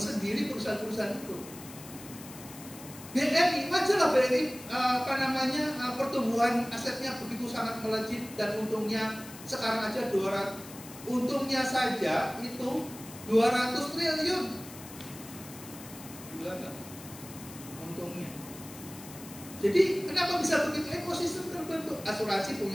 perusahaan-perusahaan itu. BRI, wajarlah BRI pertumbuhan asetnya begitu sangat melejit dan untungnya sekarang aja 200, untungnya saja itu 200 triliun. Gila nggak? Untungnya. Jadi kenapa bisa begitu? Ekosistem terbentuk. Asuransi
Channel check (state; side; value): noise; left; hiss, 16 dB below the sound